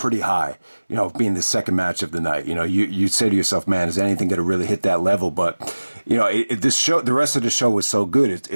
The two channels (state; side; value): inverted; both; correlation -1.00